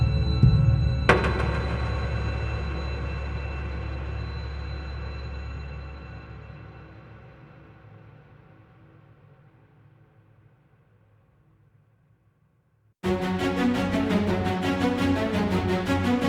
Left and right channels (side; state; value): both; identical; correlation 1.00